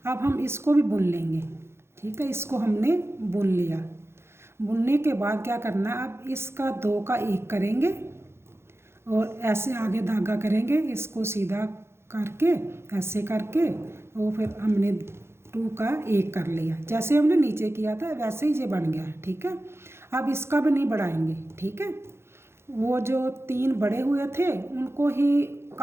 अब हम इसको भी बुन लेंगे, ठीक है। इसको हमने बुन लिया। बुनने के बाद क्या करना है, अब इसका 2 का 1 करेंगे और ऐसे आगे धागा करेंगे, इसको सीधा करके ऐसे करके, और फिर हमने 2 का 1 कर लिया। जैसे हमने नीचे किया था वैसे ही ये बन गया, ठीक है। अब इसका भी नहीं बढ़ाएंगे, ठीक है। वो जो 3 बड़े हुए थे उनको ही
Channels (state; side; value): late; left; 0.12 ms